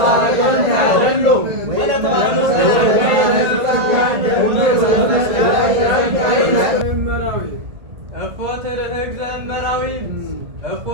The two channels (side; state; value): left; late; 1.8 ms